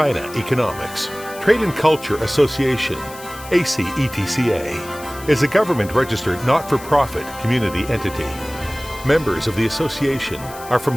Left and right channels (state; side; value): noise; left; hiss, 17 dB below the sound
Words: Economics Trade and Culture Association, ACETCA, is a government-registered not-for-profit community entity. Members of the association are from